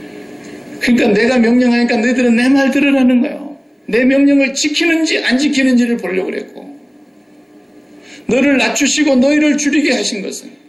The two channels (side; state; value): both; identical; correlation 1.00